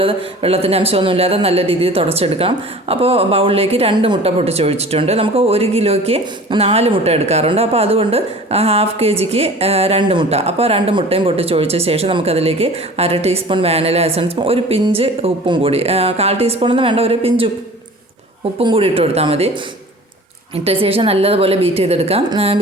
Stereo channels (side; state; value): both; normal; correlation 0.42